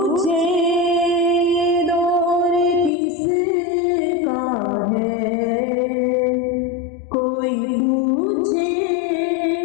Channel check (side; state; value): right; drops out; at 2.9 s